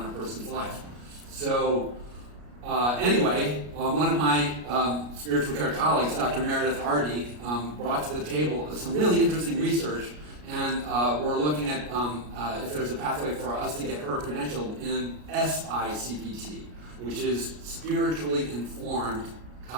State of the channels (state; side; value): late; left; 33 ms